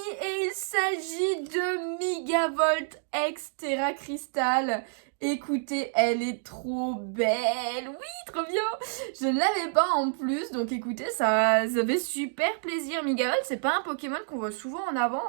Et il s'agit de Megavolt X Terra Crystal. Écoutez, elle est trop belle. Oui, trop bien. Je ne l'avais pas en plus. Donc écoutez, ça fait super plaisir. Megavolt, c'est pas un Pokémon qu'on voit souvent en avant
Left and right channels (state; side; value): silent; left; digital silence